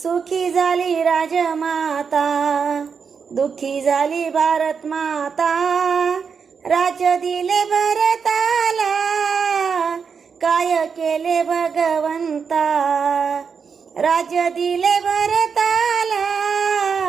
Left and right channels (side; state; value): left; quieter; 6.1 dB